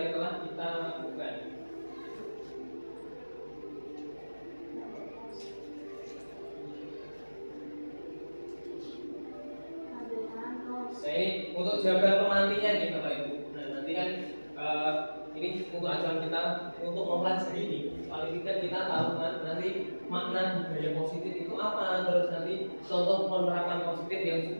telah kita lakukan. Nah ini untuk jawaban pemantinya nih Bapak Ibu. Nah nanti kan ini untuk acuan kita untuk mempelajari ini. Paling tidak kita tahu kan nanti makna budaya positif itu apa, terus nanti contoh penerapan positif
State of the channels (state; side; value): inverted; both; correlation -1.00